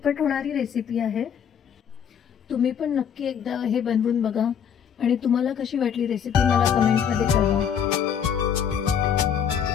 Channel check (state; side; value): quieter; right; 8.1 dB